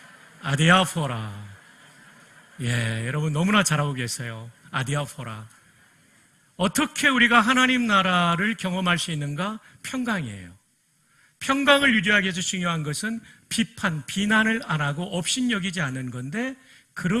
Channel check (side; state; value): both; identical; correlation 1.00